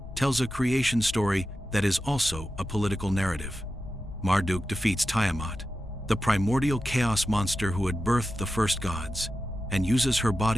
tells a creation story that is also a political narrative. Marduk defeats Tiamat, the primordial chaos monster who had birthed the first gods, and uses her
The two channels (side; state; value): left; noise; rumble, 13 dB below the sound